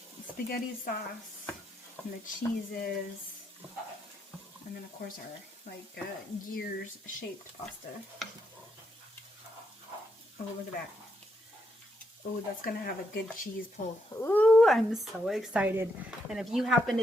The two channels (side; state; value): both; normal; correlation 0.78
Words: spaghetti sauce, and the cheeses, and then of course our gears shaped pasta. Oh, look at that. Oh, that's gonna have a good cheese pull. Ooh, I'm so excited. And if you happen